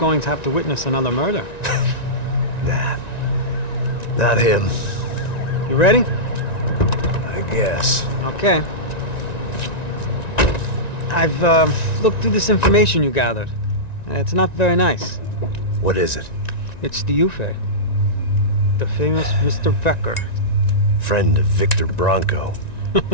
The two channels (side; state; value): right; late; 1.9 ms